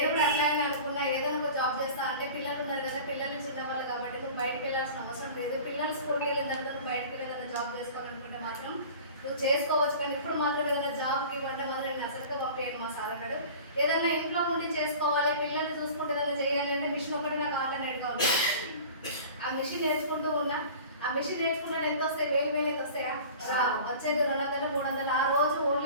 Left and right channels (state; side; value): inverted; both; correlation -0.40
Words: కూడా అట్లానే అనుకున్నా, ఏదైనా ఒక జాబ్ చేస్తా అంటే పిల్లలు ఉన్నారు కదా, పిల్లలు చిన్నవాళ్ళు కాబట్టి నువ్వు బయటకు వెళ్ళాల్సిన అవసరం లేదు. పిల్లలు స్కూల్కి వెళ్ళిన తర్వాత నువ్వు బయటకు వెళ్ళి జాబ్ చేసుకోవాలనుకుంటే మాత్రం నువ్వు చేసుకోవచ్చు. కానీ ఇప్పుడు మాత్రం ఏదైనా జాబ్కి ఇవ్వంటే మాత్రం నేను అసలుగా పంపేయండి మా సార్ అన్నాడు. ఏదైనా ఇంట్లో ఉండి చేసుకోవాలి, పిల్లల్ని చూసుకుంటే ఏదైనా చేయాలి అంటే మిషన్ ఒకటి నాకు ఆల్టర్నేట్గా ఉంది. ఆ మిషన్ నేర్చుకుంటూ ఉన్నా. ఆ మిషన్ నేర్చుకున్నాడు ఎంత వస్తాయి? 1000 అయితే వస్తాయా? వచ్చేది 200, 300. ఆ రోజు